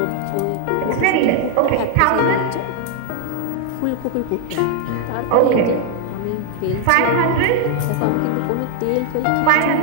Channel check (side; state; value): both; different; correlation 0.00